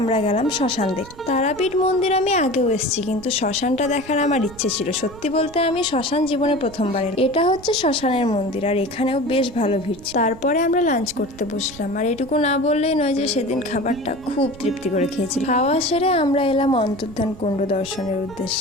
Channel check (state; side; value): noise; right; rumble, 19 dB below the sound